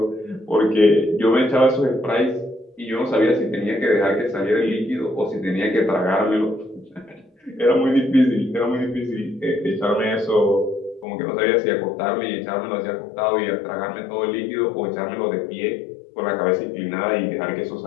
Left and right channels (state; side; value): drops out; right; at 11.1 s